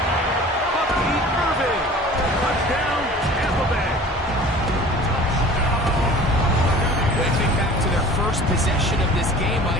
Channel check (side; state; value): both; normal; correlation 0.44